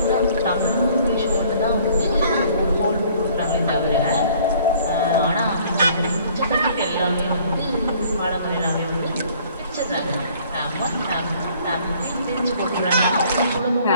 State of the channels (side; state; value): both; inverted; correlation -0.57